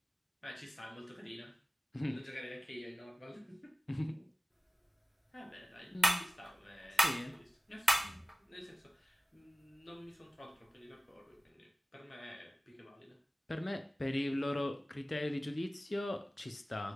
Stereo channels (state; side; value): normal; both; correlation 0.97